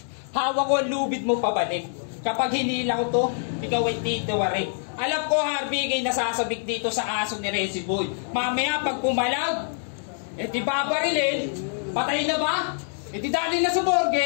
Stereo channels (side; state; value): right; silent; digital silence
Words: Hawak ko ang lubid mo pabalik. Kapag hinila ko to, ikaw ay titiwarik. Alam ko Harvey kay nasasabik dito sa aso ni Resi Boy. Mamaya pag pumalag, di babarilin. Patay na ba? Di dali na sa